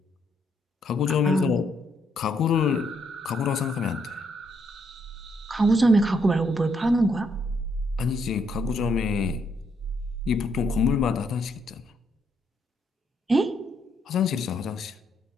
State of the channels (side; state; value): both; normal; correlation 0.74